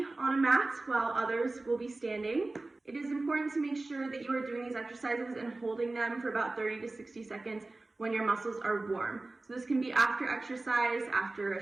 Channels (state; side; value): quieter; left; 3.1 dB